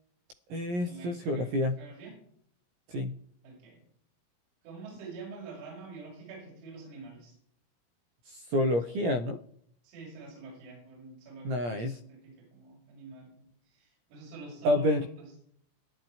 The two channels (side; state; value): left; late; 17 ms